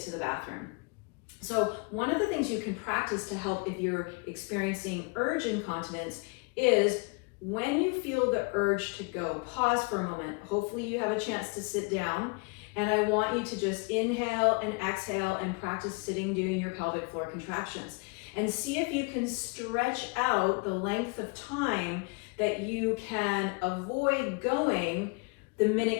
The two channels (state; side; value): quieter; right; 31.6 dB